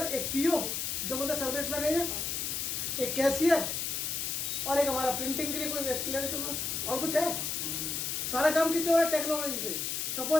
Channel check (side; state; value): left; noise; hiss, 2 dB below the sound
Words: एक पीओ जिसे बोलते हैं सर्विस मैनेजर, एक कैशियर, और एक हमारा प्रिंटिंग के लिए कोई व्यक्ति, और कुछ है? सारा काम किससे हो रहा है? टेक्नोलॉजी से।